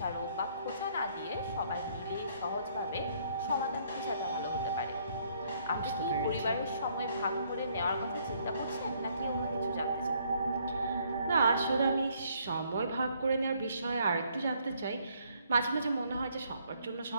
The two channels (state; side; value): inverted; both; correlation -0.67